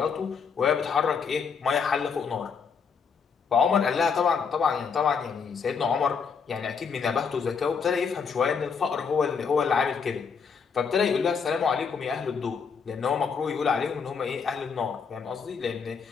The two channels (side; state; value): right; quieter; 6.0 dB